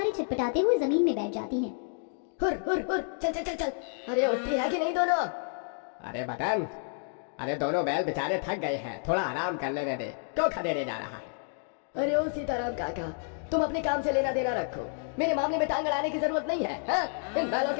छटपटाते हुए जमीन में बैठ जाती हैं। हुर हुर हुर, चल चल चल चल। अरे उठती है कि नहीं दोनों? अरे मदन, अरे दोनों बैल बेचारे थक गए हैं, थोड़ा आराम कर लेने दे। क्यों खदेड़े जा रहा है? अरे ओ सीताराम काका, तुम अपने काम से लेना देना रखो। मेरे मामले में टांग अड़ाने की जरूरत नहीं है। हाँ? इन बैलों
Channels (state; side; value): silent; right; 58 dB below the other